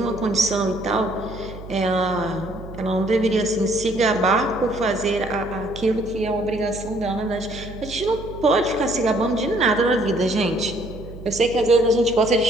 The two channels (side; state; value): right; noise; hum, 14 dB below the sound